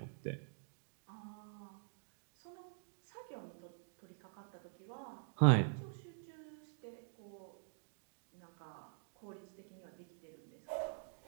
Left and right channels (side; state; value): left; silent; digital silence